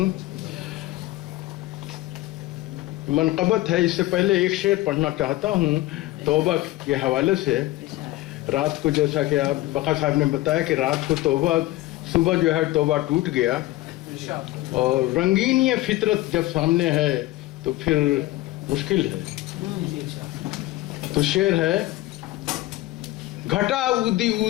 منقبت ہے، اس سے پہلے ایک شعر پڑھنا چاہتا ہوں توبہ کے حوالے سے. رات کو جیسا کہ آپ بقا صاحب نے بتایا کہ رات کو توبہ، صبح جو ہے توبہ ٹوٹ گیا، اور رنگین یہ فطرت جب سامنے ہے تو پھر مشکل ہے. تو شعر ہے: گھٹا اودی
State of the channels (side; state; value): right; quieter; 17.6 dB